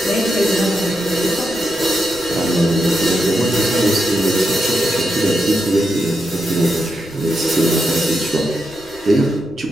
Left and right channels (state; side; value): noise; left; rumble, 25 dB below the sound